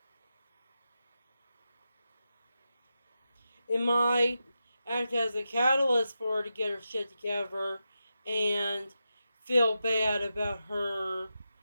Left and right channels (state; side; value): inverted; both; correlation -0.90